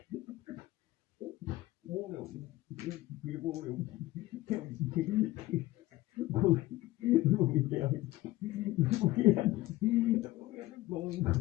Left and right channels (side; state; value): right; quieter; 17.7 dB